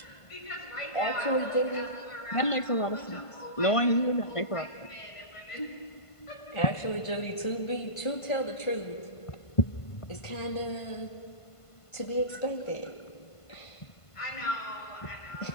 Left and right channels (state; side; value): late; right; 1.5 ms